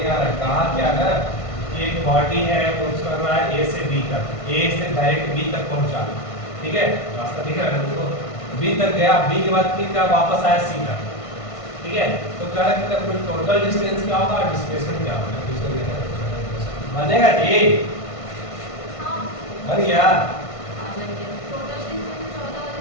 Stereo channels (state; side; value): late; right; 1.5 ms